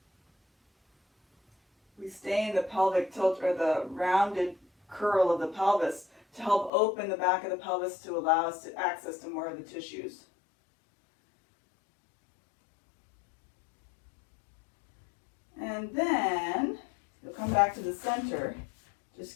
We stay in the pelvic tilt, or the rounded curl of the pelvis, to help open the back of the pelvis to allow us to access to more of the tissues. And then you'll come back to the center.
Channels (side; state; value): right; drops out; at 6.7 s